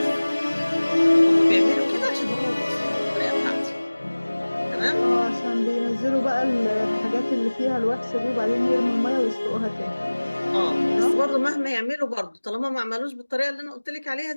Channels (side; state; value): both; inverted; correlation -1.00